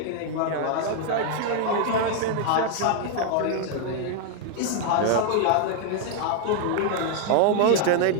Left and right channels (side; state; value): both; different; correlation 0.00